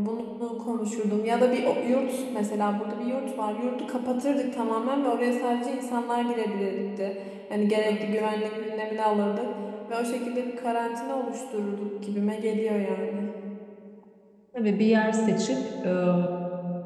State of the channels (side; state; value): both; identical; correlation 1.00